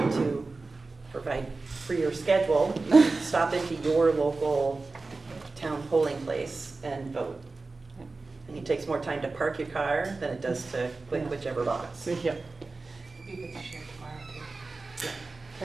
to provide for your schedule, stop into your local town polling place and vote. And it takes more time to park your car than it does to click whichever box. Yeah. You could share tomorrow too.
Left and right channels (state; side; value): quieter; left; 3.7 dB